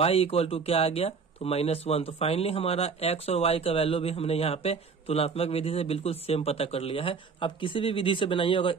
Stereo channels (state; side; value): quieter; left; 5.4 dB